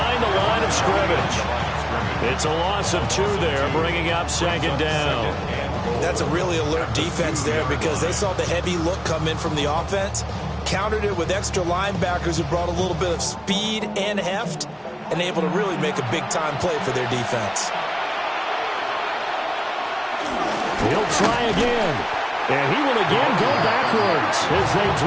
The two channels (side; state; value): both; identical; correlation 1.00